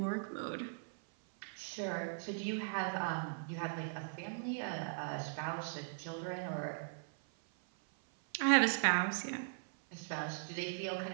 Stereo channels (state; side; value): silent; left; 52 dB below the other